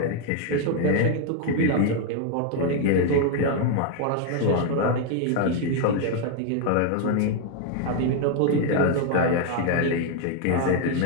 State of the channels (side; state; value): both; different; correlation 0.01